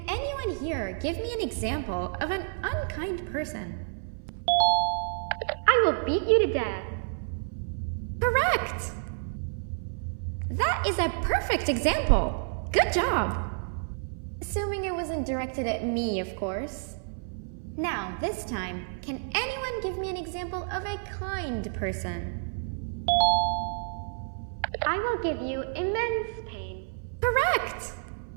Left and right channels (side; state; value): left; silent; 57 dB below the other